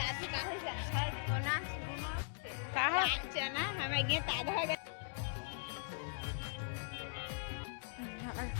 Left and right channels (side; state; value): right; silent; digital silence